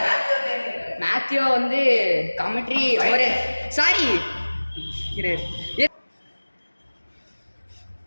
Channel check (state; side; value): inverted; both; correlation -1.00